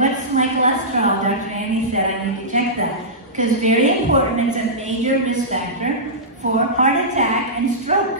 my cholesterol? Dr. Annie said I need to check that. Because very important, it's a major risk factor for heart attack and stroke,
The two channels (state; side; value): normal; both; correlation -0.16